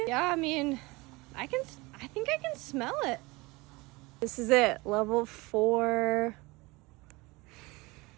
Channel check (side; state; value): left; quieter; 23.5 dB